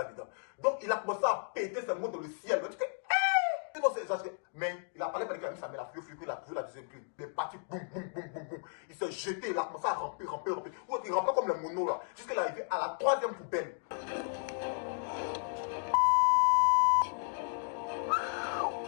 dedans. Donc, il a commencé à péter ses mots dans le ciel. Il a dit que, non, c'est exagéré. Mais il a parlé qu'il a mis sa main, il a trouvé la deuxième clé. Il est parti, boum. Il s'est jeté, il a commencé à ramper. Il rampait comme les monos là. Jusqu'à l'arrivée à la 3e poubelle.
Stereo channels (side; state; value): right; silent; digital silence